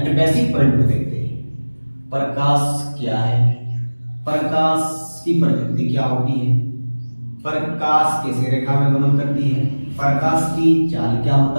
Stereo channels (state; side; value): inverted; both; correlation -1.00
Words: बेसिक पॉइंट को देखते हैं। प्रकाश क्या है, प्रकाश की प्रकृति क्या होती है, प्रकाश कैसे रेखा में गमन करती है, प्रकाश की चाल क्या